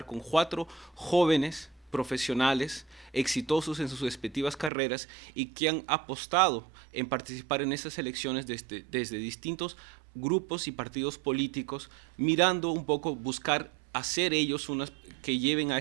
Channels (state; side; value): drops out; left; at 4.7 s